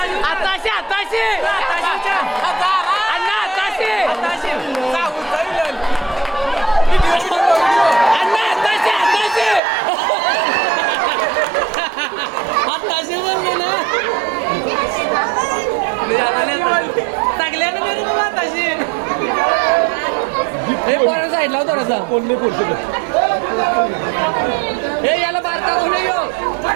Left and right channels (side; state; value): left; drops out; at 9.6 s